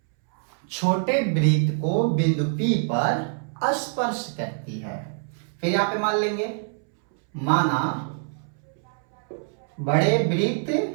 छोटे वृत्त को बिंदु P पर स्पर्श करती है। फिर यहां पे मान लेंगे माना बड़े वृत्त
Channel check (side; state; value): left; silent; 62 dB below the other